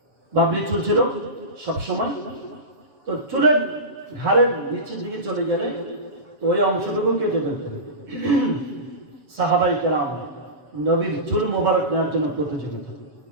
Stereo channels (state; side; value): late; left; 7.4 ms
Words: বাবরি চুল ছিল সবসময়, তো চুলের ঘাড়ের নিচের দিকে চলে গেলে ওই অংশটুকু কেটে ফেলতেন। সাহাবায়ে কেরাম নবীর চুল মোবারক নেওয়ার জন্য প্রতিযোগিতা।